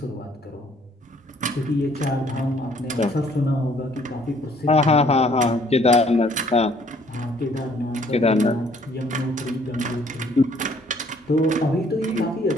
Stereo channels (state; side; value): normal; both; correlation 0.61